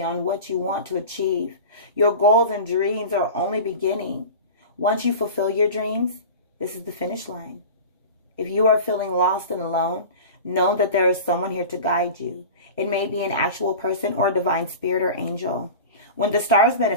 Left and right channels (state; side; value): inverted; both; correlation -0.33